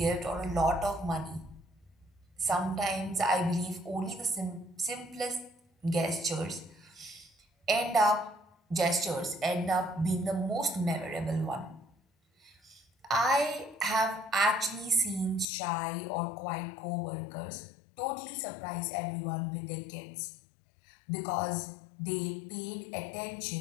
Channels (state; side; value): drops out; right; at 15.5 s